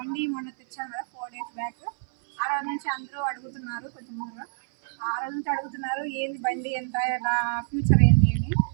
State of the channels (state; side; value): silent; left; 60 dB below the other